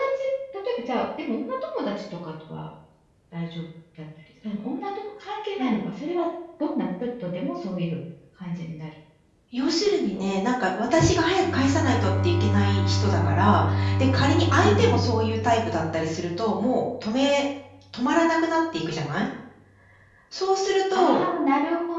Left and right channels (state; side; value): identical; both; correlation 1.00